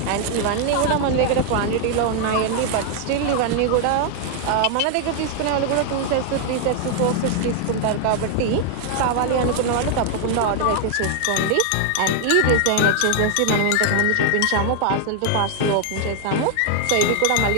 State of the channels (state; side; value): different; both; correlation 0.00